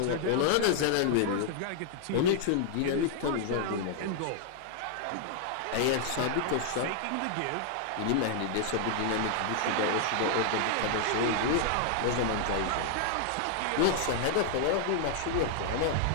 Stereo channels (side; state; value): both; different; correlation 0.00